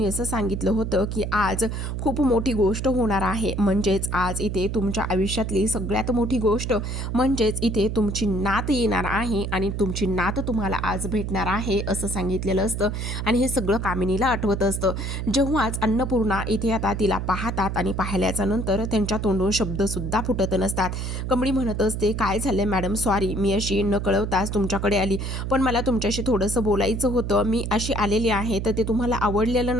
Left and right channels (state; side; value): noise; right; hum, 3 dB below the sound